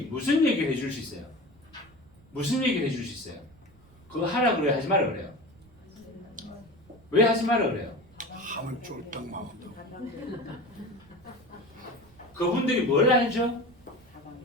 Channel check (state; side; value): noise; right; rumble, 27 dB below the sound